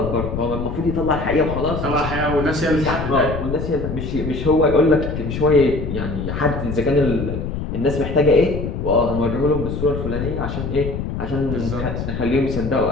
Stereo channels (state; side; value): noise; left; rumble, 5 dB below the sound